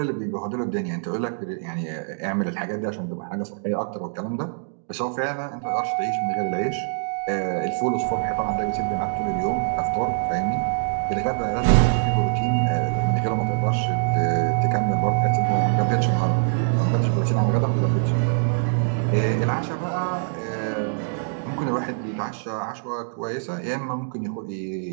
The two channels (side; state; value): left; silent; digital silence